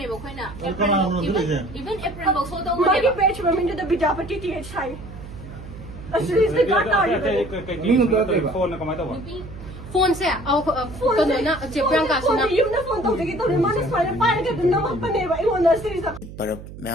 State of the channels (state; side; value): noise; right; hum, 14 dB below the sound